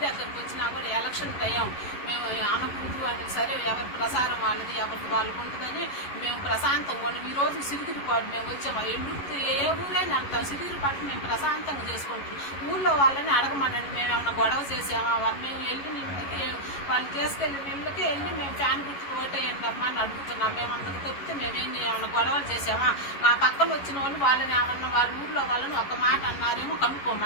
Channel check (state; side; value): late; right; 11 ms